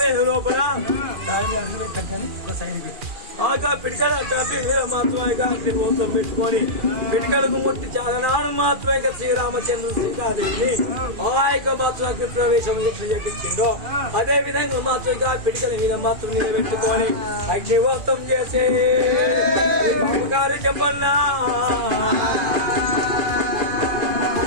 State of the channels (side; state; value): left; late; 2.4 ms